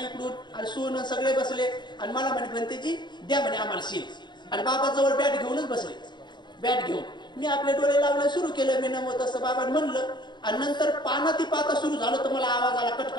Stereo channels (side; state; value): right; late; 0.22 ms